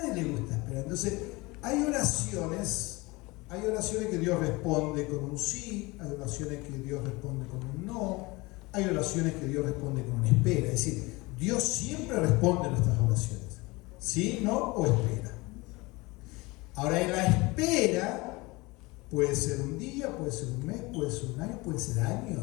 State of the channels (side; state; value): right; quieter; 23.4 dB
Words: le gusta esperar. Entonces, hay oraciones que Dios responde con un sí, hay oraciones que Dios responde con un no, hay oraciones que Dios responde con una espera. Es decir, Dios siempre responde a nuestras oraciones. Sí, no o espera. Ahora, en la espera puede ser un día, puede ser un mes, puede ser un año, puede ser